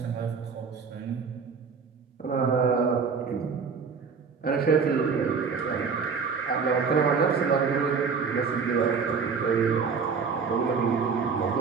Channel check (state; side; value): quieter; left; 5.6 dB